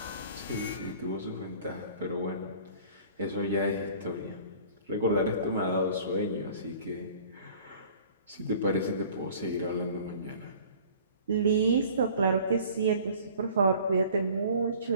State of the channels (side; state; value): both; inverted; correlation -0.48